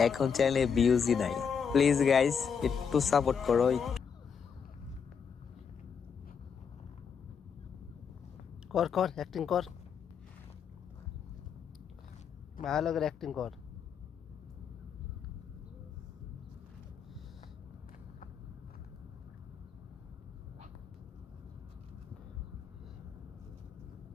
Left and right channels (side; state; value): right; quieter; 6.7 dB